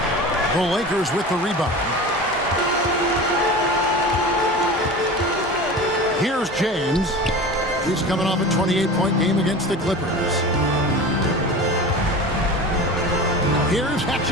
The Lakers with the rebound. Here's James. He's coming off a 28-point game against the Clippers. Here's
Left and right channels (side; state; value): both; normal; correlation 0.33